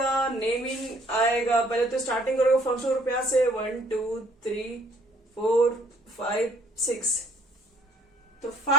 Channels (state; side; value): normal; both; correlation 0.61